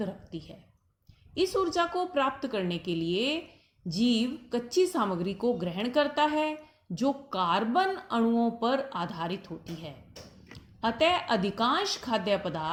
रखती है। इस ऊर्जा को प्राप्त करने के लिए जीव कच्ची सामग्री को ग्रहण करता है, जो कार्बन अणुओं पर आधारित होती है। अतः अधिकांश खाद्य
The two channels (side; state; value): both; identical; correlation 1.00